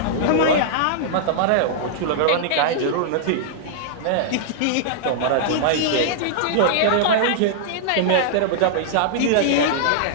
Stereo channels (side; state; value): both; different; correlation -0.01